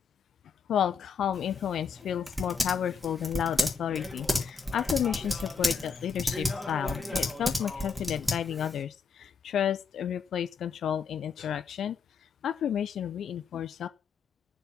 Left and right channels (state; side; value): quieter; right; 5.6 dB